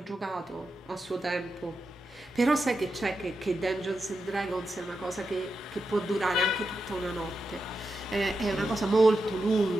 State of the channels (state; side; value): normal; both; correlation 0.88